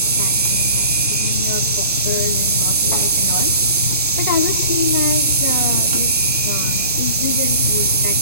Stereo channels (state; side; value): inverted; both; correlation -0.45